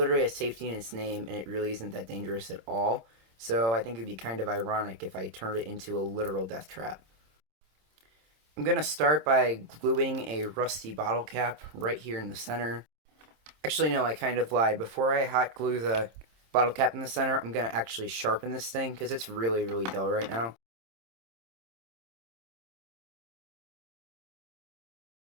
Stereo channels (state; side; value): late; left; 26 ms